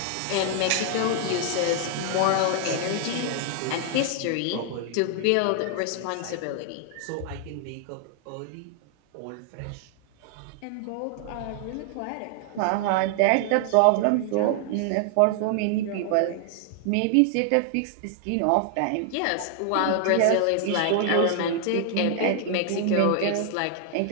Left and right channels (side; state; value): both; different; correlation 0.00